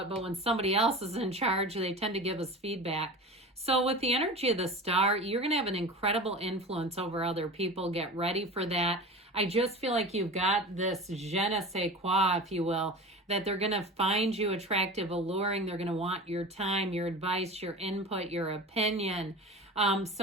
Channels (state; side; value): normal; both; correlation 0.33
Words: but when somebody else is in charge, they tend to give us feedback. So with the energy of the Star, you're going to have an incredible influence over other people. Get ready for that. I just feel like you've got this je ne sais quoi, if you will, that they're going to find you attractive, alluring. They're going to want your time, your advice, your input, your opinion.